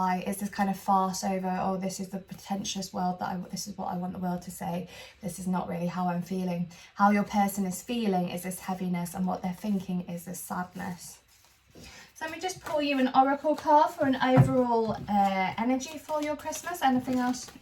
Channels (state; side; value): identical; both; correlation 1.00